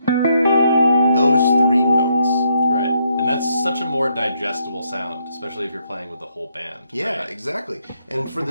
those 3 notes. Right, and that's such a more digestible sound, especially if you're playing with the whole band. Yeah, right? exactly. And for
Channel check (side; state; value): both; inverted; correlation -0.75